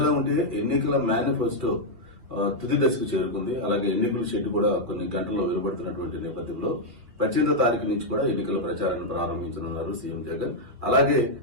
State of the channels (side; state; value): left; late; 2.2 ms